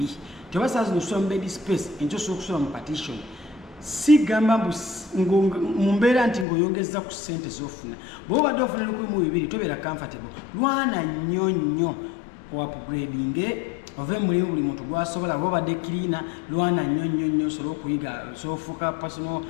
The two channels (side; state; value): right; drops out; at 6.5 s